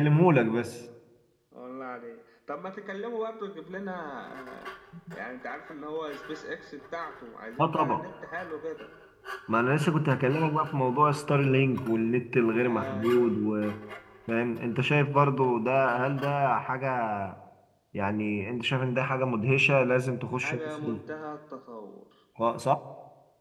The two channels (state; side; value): identical; both; correlation 1.00